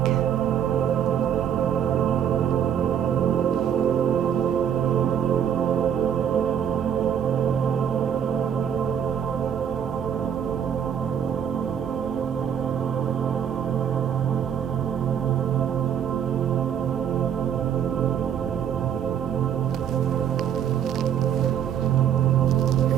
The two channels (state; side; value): quieter; left; 8.9 dB